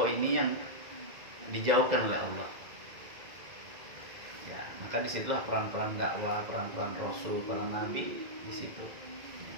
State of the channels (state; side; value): late; left; 2.0 ms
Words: ini yang dijauhkan oleh Allah. Ya, maka disitulah peran-peran dakwah, peran-peran Rasul, para Nabi di situ.